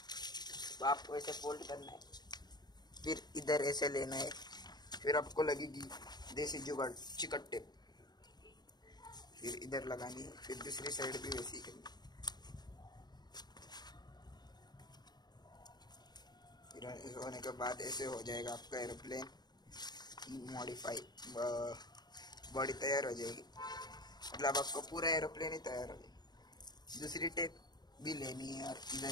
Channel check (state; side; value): late; right; 0.20 ms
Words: तो आपको ऐसे फोल्ड करना है, फिर इधर ऐसे लेना है, फिर आपको लगेगी देसी जुगाड़ चिकट टेप, फिर इधर लगानी, फिर दूसरी साइड भी वैसे ही करनी। फिर होने के बाद ऐसे हो जाएगा आपका एरोप्लेन मॉडिफाई, बॉडी तैयार हो जाएगी। मतलब आपको पूरा एरोप्लेन ही तैयार हो जाएगा। दूसरी टेप भी लेनी है और